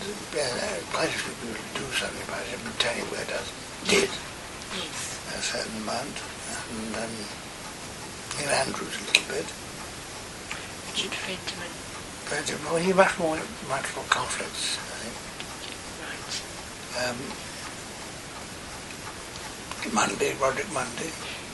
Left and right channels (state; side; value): identical; both; correlation 1.00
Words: a few people do something about it, but tell you where it did. Yes. A certain amount. And Neil Andrews a little bit. Richard Fentiman. But well, he much more conflicts, I think. Right. Roderick Mundy.